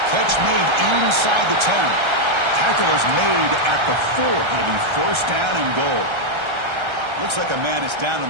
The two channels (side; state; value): left; late; 1.3 ms